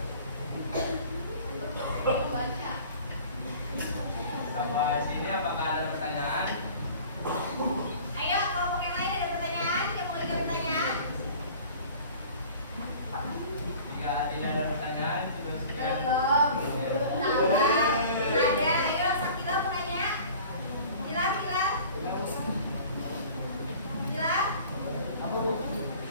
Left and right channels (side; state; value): both; inverted; correlation -0.45